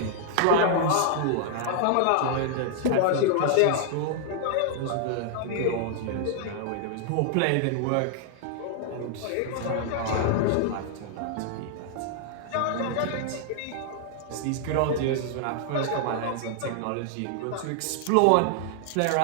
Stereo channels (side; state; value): both; different; correlation -0.01